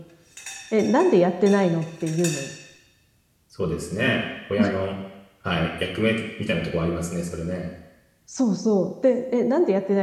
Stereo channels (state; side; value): identical; both; correlation 1.00